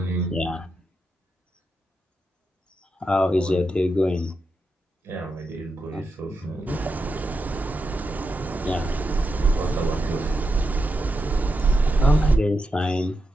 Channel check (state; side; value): normal; both; correlation 0.86